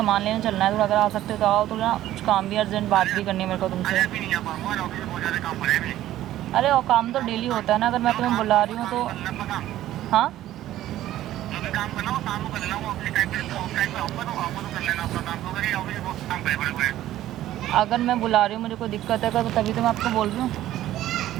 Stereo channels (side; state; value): left; quieter; 13.7 dB